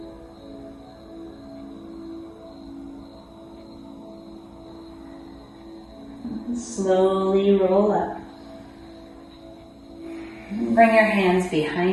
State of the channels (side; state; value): both; identical; correlation 1.00